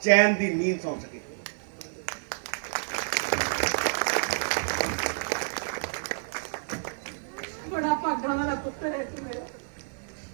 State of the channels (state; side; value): silent; left; digital silence